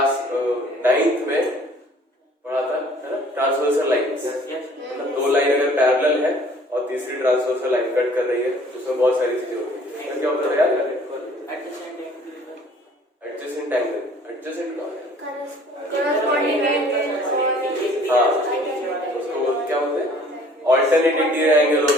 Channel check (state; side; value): normal; both; correlation 0.54